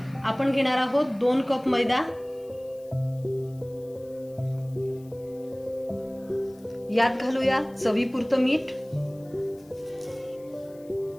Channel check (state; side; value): noise; left; hiss, 28 dB below the sound